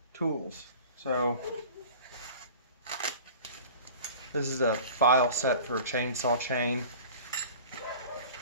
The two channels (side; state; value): both; inverted; correlation -0.41